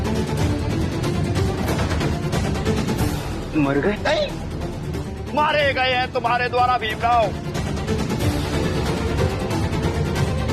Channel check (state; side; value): identical; both; correlation 1.00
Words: मर गए? नहीं, मारे गए हैं तुम्हारे द्वारा भीमराव।